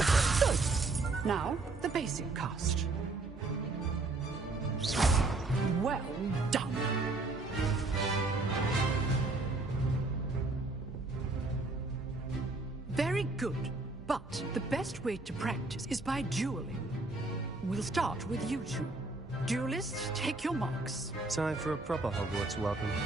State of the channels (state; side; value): quieter; left; 3.3 dB